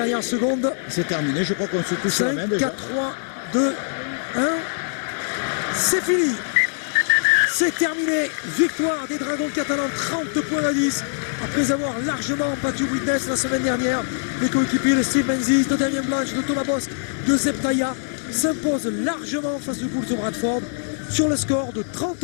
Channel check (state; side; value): silent; right; digital silence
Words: secondes. C'est terminé. Je crois qu'on se touche la 5, main déjà. 4, 3, 2, 1. C'est fini. C'est terminé. Victoire des Dragons catalans, 30 points à 10. Après avoir largement battu Widnes la semaine dernière, les coéquipiers de Steve Menzies, de Damien Blanche, de Thomas Bosque, de Zeb Taya s'imposent largement face aux Bulls de Bradford sur le score de